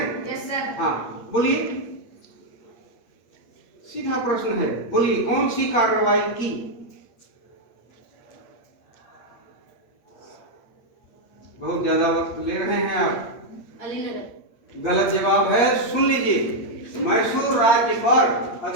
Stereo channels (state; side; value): late; right; 8.6 ms